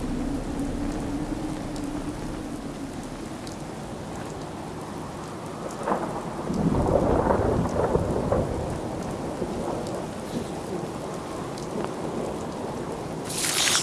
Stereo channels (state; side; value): identical; both; correlation 1.00